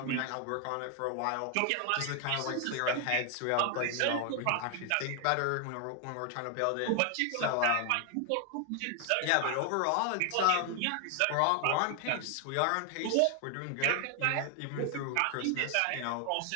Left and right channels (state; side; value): different; both; correlation 0.01